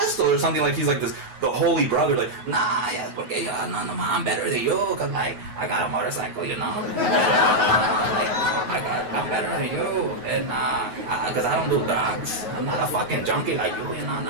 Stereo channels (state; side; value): late; left; 9.3 ms